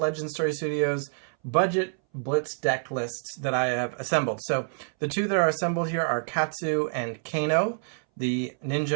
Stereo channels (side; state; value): left; silent; 60 dB below the other